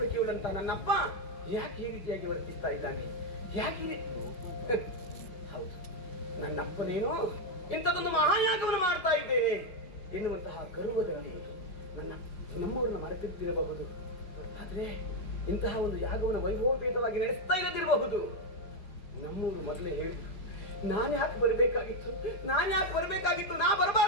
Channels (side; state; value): right; late; 5.6 ms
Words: ನನ್ನಪ್ಪ ಯಾಕೆ ಈ ರೀತಿಯಾಗಿ ವರ್ತಿಸ್ತಾ ಇದ್ದಾನೆ? ಯಾಕೆ ಹೌದು, ನನ್ನಪ್ಪನೇನೋ ಇಂಥದೊಂದು ಮಹಾಯಾಗವನ್ನು ಮಾಡ್ತಾ ಇದ್ದೇನೆ ಎನ್ನುವಂತಹ ಗರ್ವದಲ್ಲಿ ನಮ್ಮವರನ್ನು ಮರೆತಿದ್ದಿರಬಹುದು. ಆದ್ರೆ ಇಂತಹ ಒಂದು ಯಾಗವನ್ನು ವೈಭವಪೇತವಾಗಿ ನಡೆಸ್ತಾ ಇಲ್ಲದಿರಬಹುದು. ನಮ್ಮೂರು ಮೊದಲೇ ಹೇಳಿ ನಾನು ಯಾಕೆ ಬರಬೇಕಾಗಿತ್ತು, ನಾ